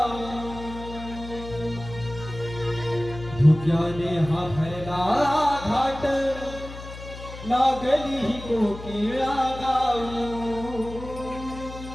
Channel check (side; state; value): left; noise; hum, 12 dB below the sound